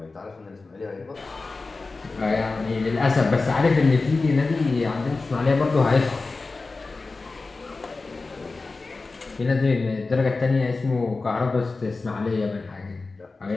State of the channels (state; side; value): quieter; right; 3.8 dB